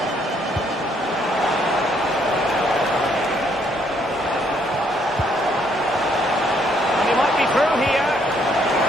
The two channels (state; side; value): normal; both; correlation 0.69